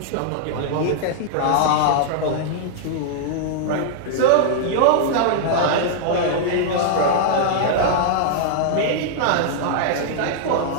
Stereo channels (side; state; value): both; different; correlation -0.01